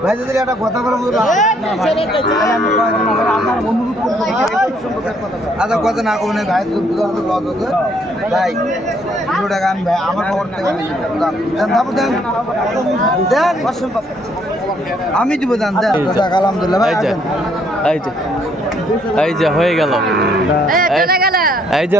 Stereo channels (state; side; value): normal; both; correlation 0.68